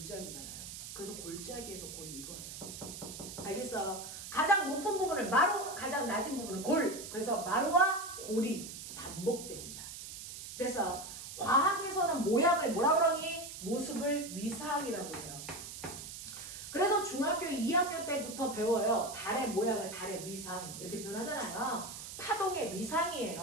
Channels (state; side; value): noise; right; hiss, 10 dB below the sound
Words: 그래서 골짜기에서 골이 이거예요. 알겠어? 가장 높은 부분을 마루, 가장 낮은 부분을 골. 그래서 마루와 골이 반복됩니다. 그래서 과학에서는 모양을 뭐라 그러니? 모습을 위상이라고 해요. 그래서 중학교 2학년 때부터 배워요. 달의 모양을 달의 위상 이렇게 표현하잖아요. 파동의